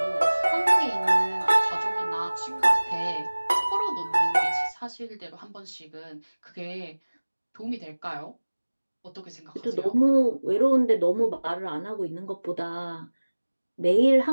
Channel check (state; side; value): inverted; both; correlation -1.00